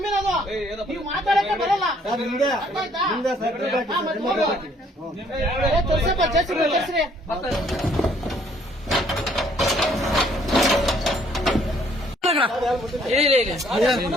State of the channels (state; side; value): normal; both; correlation 0.64